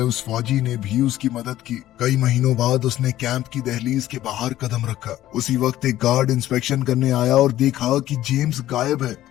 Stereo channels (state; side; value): quieter; right; 13.9 dB